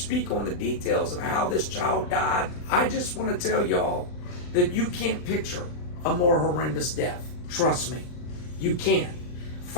on the details of how this child died. I just want to tell y'all that you can't picture a more horrendous death. Trust me, you can't.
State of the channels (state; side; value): late; right; 39 ms